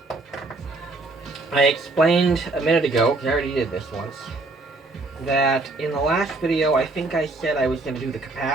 I explained a minute ago, because I already did this once, that in the last video I think I said I was going to do the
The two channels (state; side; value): quieter; left; 3.3 dB